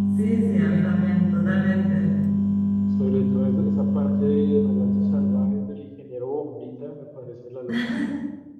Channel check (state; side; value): identical; both; correlation 1.00